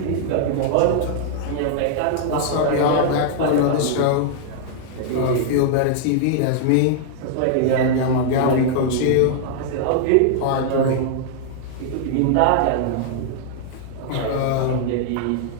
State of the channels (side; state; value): both; different; correlation -0.01